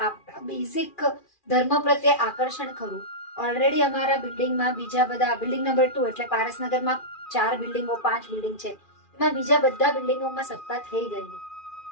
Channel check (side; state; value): right; late; 2.4 ms